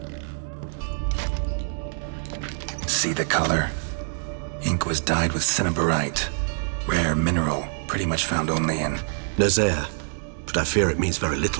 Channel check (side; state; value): left; silent; digital silence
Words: See the color? Ink was dyed with cinnabarite. Rare mineral, pretty much found only in Nazaire. But I fear it means very